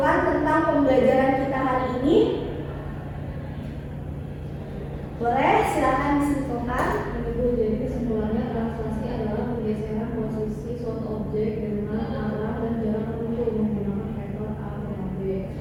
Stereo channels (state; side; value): identical; both; correlation 1.00